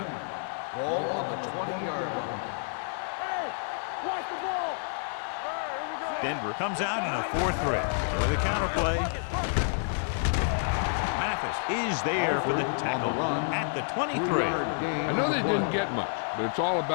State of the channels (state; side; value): silent; right; digital silence